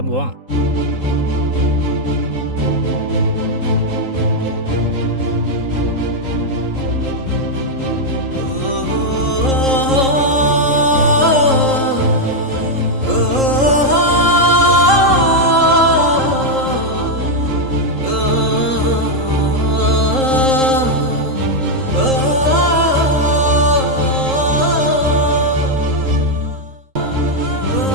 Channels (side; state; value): left; late; 3.8 ms